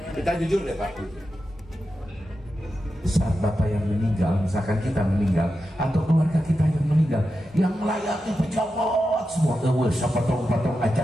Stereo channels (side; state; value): both; normal; correlation 0.90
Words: kita jujur deh Pak. Saat Bapak yang meninggal, misalkan kita meninggal atau keluarga kita yang meninggal, yang melayani pejabat semua, sapotong-potong